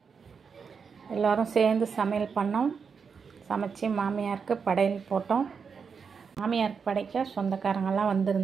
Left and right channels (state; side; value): quieter; left; 5.9 dB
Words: எல்லோரும் சேர்ந்து சமையல் பண்ணோம். சமைச்சு மாமியாருக்கு படையல் போட்டோம். மாமியாருக்கு படைக்க சொந்தக்காரங்கெல்லாம்